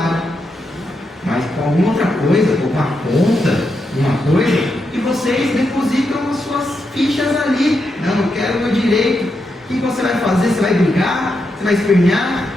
mas com alguma outra coisa, com uma conta, uma coisa, e vocês depositam as suas fichas ali. Não, eu quero o meu direito. O que você vai fazer? Você vai brigar? Você vai espernear?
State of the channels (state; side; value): normal; both; correlation 0.84